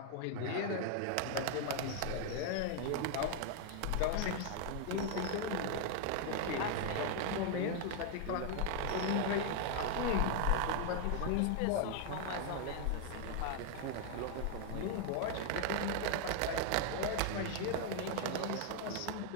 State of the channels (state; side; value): different; both; correlation 0.00